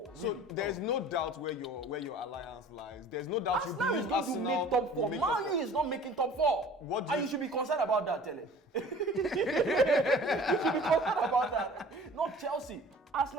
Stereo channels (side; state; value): both; normal; correlation 0.46